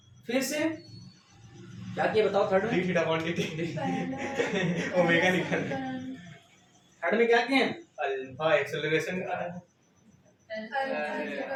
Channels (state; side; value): identical; both; correlation 1.00